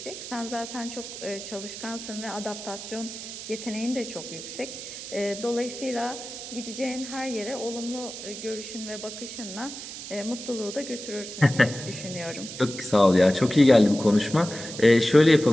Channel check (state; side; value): noise; right; hiss, 10 dB below the sound